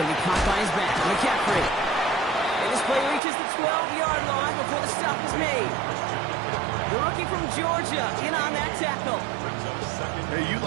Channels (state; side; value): drops out; left; at 3.2 s